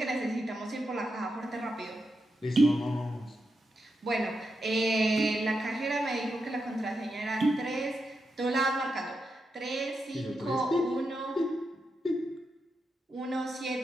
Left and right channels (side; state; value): both; normal; correlation 0.86